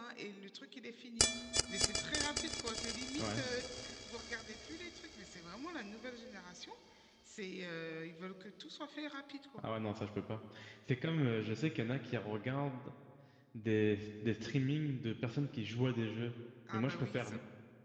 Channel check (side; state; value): both; identical; correlation 1.00